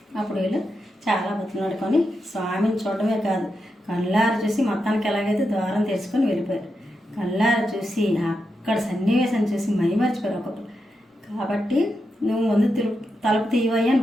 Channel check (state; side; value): normal; both; correlation 0.86